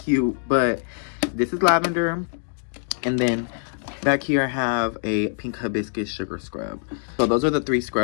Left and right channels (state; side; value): silent; right; digital silence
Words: But this is lavender. And then back here I have a pink hibiscus sugar scrub. So those are the 3